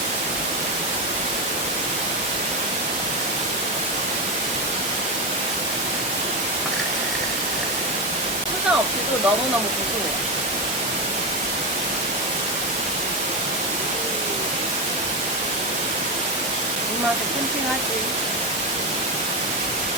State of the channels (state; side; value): normal; both; correlation 0.14